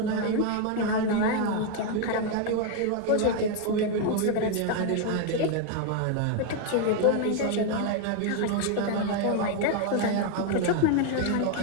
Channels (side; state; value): both; different; correlation 0.01